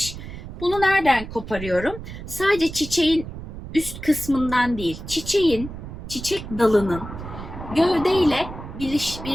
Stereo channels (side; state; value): right; noise; rumble, 11 dB below the sound